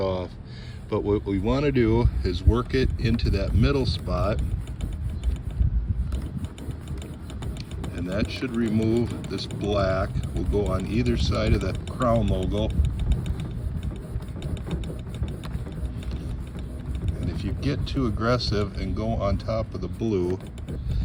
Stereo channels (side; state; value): both; identical; correlation 1.00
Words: But what we want to do is work it into that middle spot, and that should remove this black. We'll go on either side of the crown logo. And if you get too aggressive and go on top of the blue,